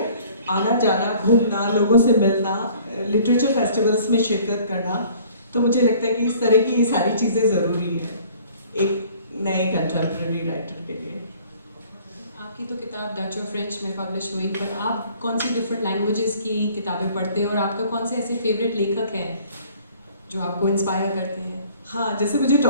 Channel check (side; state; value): both; inverted; correlation -0.53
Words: आना जाना, घूमना, लोगों से मिलना, लिटरेचर फेस्टिवल्स में शिरकत करना, तो मुझे लगता है कि इस तरह की ये सारी चीज़ें ज़रूरी है एक नए कंटेम्प्रेरी राइटर के लिए। आपकी तो किताब डच और फ्रेंच में पब्लिश हुई, पर आप कौन सी डिफरेंट लैंग्वेजेस की किताबें पढ़ते हैं और आपका कौन से ऐसे फेवरेट लेखक हैं जो आपको इंस्पायर करते हैं? हाँ, जैसे मुझे